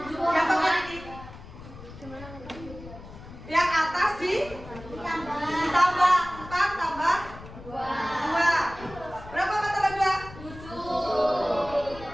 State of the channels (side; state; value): left; noise; rumble, 16 dB below the sound